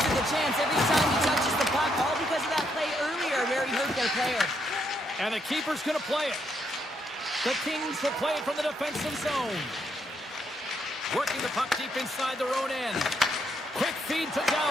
of the chance every time he touches the puck, all because of that play earlier where he hurt their player. And the keeper's going to play it. The Kings will play it from the defensive zone. Working the puck deep inside their own end. Quick feed to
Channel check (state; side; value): normal; both; correlation 0.76